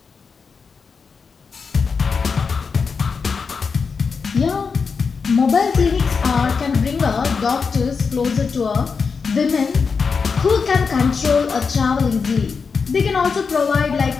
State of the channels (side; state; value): right; quieter; 5.3 dB